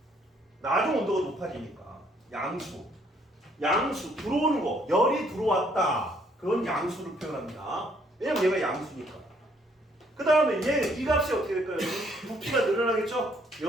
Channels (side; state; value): both; normal; correlation 0.66